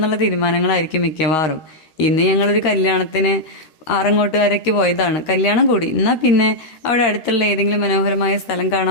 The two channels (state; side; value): late; right; 13 ms